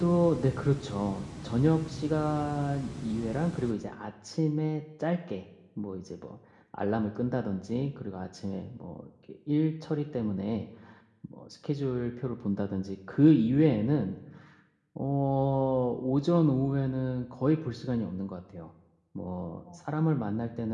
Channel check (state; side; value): identical; both; correlation 1.00